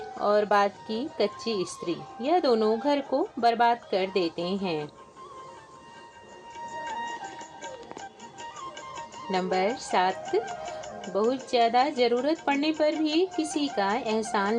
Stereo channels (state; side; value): identical; both; correlation 1.00